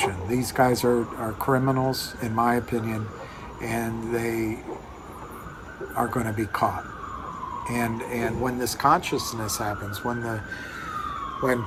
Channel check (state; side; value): identical; both; correlation 1.00